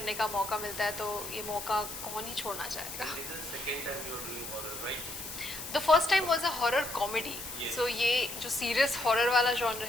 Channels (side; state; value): left; noise; hiss, 9 dB below the sound